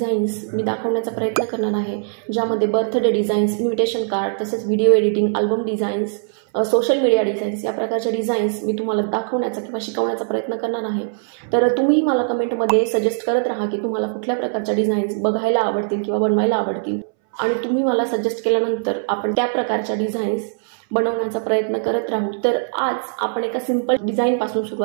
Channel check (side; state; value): left; silent; 63 dB below the other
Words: मी दाखवण्याचा प्रयत्न करणार आहे. ज्यामध्ये बर्थडे डिझाईन्स, इन्व्हिटेशन कार्ड, तसेच video editing, album designs, social media designs या प्रकारच्या डिझाईन्स मी तुम्हाला दाखवण्याचा किंवा शिकवण्याचा प्रयत्न करणार आहे. तर तुम्ही मला कमेंटमध्ये सजेस्ट करत राहा की तुम्हाला कुठल्या प्रकारच्या डिझाईन्स बघायला आवडतील किंवा बनवायला आवडतील, आणि तुम्ही मला सजेस्ट केल्यानंतर आपण त्या प्रकारच्या डिझाईन्स बनवण्याचा प्रयत्न करत राहू. तर आज आपण एका सिंपल डिझाईनपासून